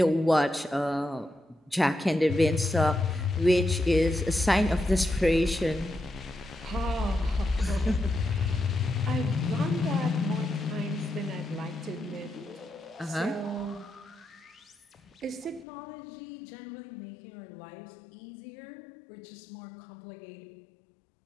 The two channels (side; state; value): right; drops out; at 15.7 s